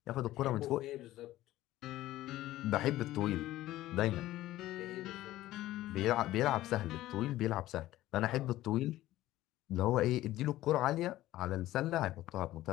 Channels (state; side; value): quieter; right; 15.5 dB